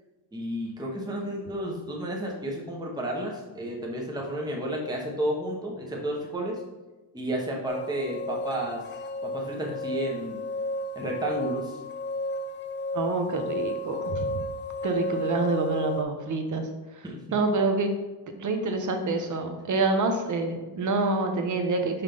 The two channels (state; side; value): normal; both; correlation 0.12